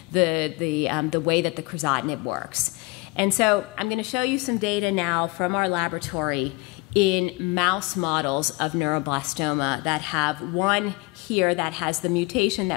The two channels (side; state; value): right; quieter; 25.3 dB